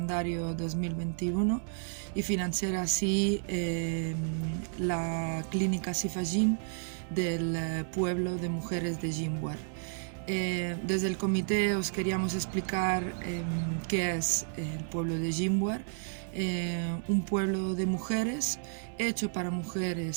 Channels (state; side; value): silent; left; digital silence